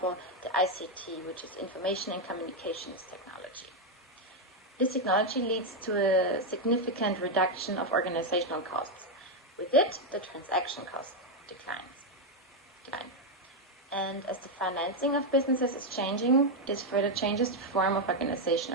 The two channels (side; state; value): both; normal; correlation 0.02